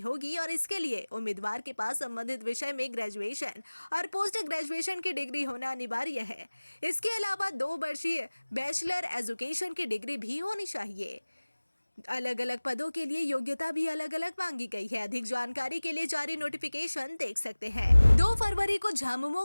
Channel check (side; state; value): both; inverted; correlation -1.00